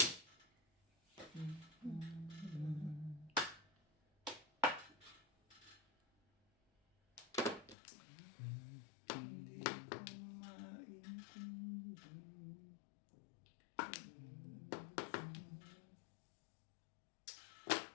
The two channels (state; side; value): drops out; right; at 7.8 s